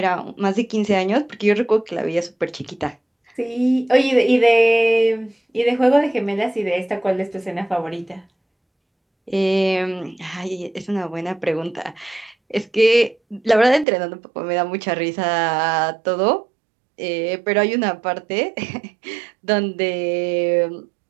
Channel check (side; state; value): left; drops out; at 13.9 s